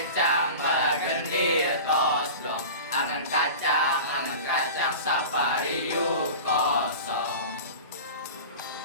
balagendir tos blong. Angan kacang, sapariu kosong.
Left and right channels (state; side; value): inverted; both; correlation -0.33